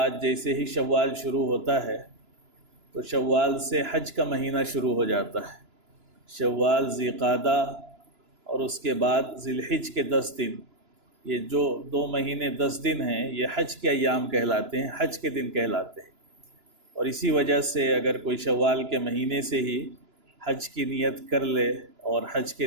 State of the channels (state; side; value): late; left; 2.9 ms